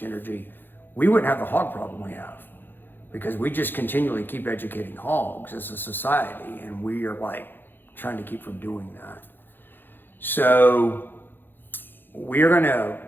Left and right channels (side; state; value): right; late; 0.097 ms